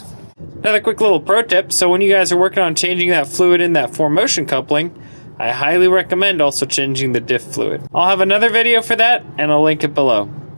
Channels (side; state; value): both; inverted; correlation -1.00